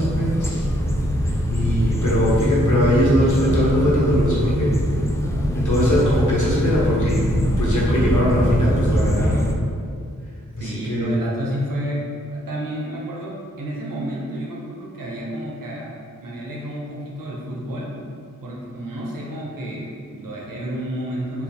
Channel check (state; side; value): normal; both; correlation 0.70